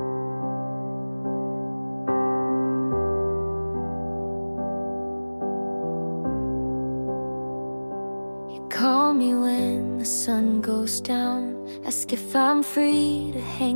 Call me when the sun goes down, ask if I'm free to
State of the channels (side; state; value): both; inverted; correlation -1.00